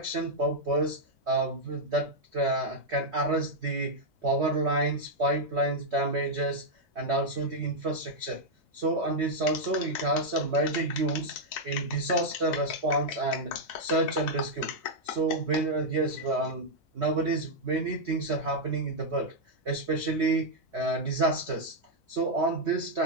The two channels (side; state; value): both; normal; correlation -0.03